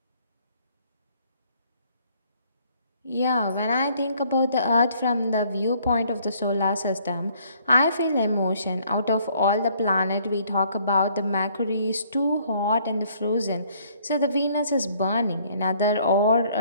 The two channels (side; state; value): both; inverted; correlation -0.63